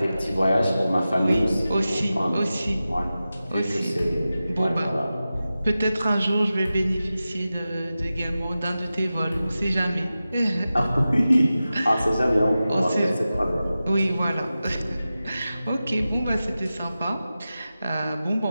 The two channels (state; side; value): inverted; both; correlation -0.94